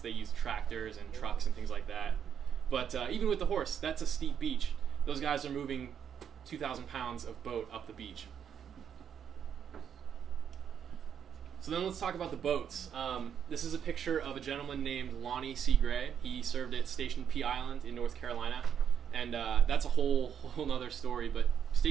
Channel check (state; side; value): quieter; left; 8.4 dB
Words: they used tractors and trucks and things like that. But even with the horse, that's a steep beach. Those guys are moving 2,000 pounds of boat up the beach. So then let's talk about the boats. This is a picture of a gentleman named Lonnie C. Gray. He served at Station P Island in North Carolina. And that's a whole nother story, but